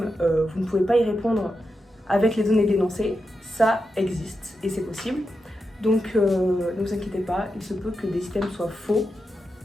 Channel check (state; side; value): normal; both; correlation 0.88